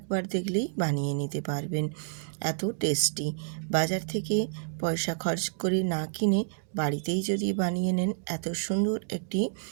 দেখলেই বানিয়ে নিতে পারবেন, এত টেস্টি। বাজার থেকে পয়সা খরচ করে না কিনে বাড়িতেই যদি বানিয়ে নেন এত সুন্দর একটি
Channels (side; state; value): left; silent; digital silence